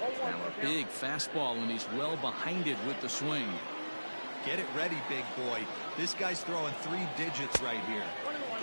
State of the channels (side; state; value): both; inverted; correlation -1.00